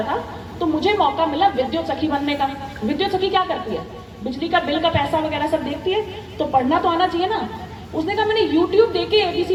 था, तो मुझे मौका मिला विद्युत सखी बनने का। विद्युत सखी क्या करती है? बिजली का बिल का पैसा वगैरह सब देखती है, तो पढ़ना तो आना चाहिए ना। उसने कहा मैंने YouTube देख के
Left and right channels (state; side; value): identical; both; correlation 1.00